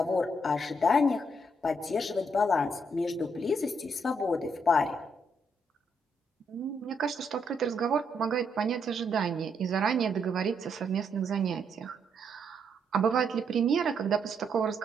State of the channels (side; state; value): both; normal; correlation 0.75